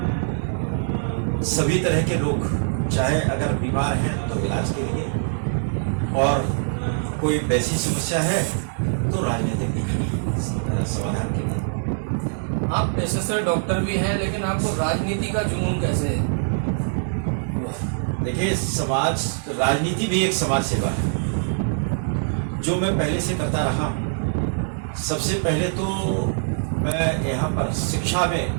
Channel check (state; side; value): silent; left; digital silence